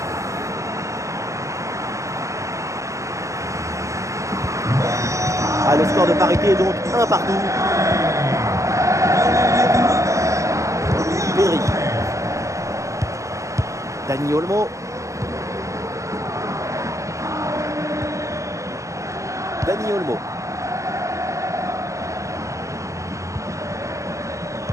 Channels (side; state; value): left; late; 0.15 ms